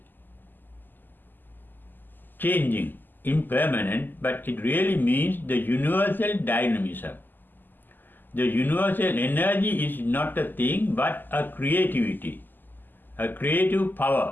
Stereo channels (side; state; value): right; late; 0.090 ms